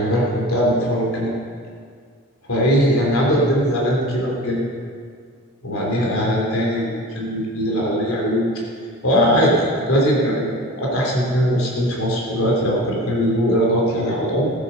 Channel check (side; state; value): both; normal; correlation 0.36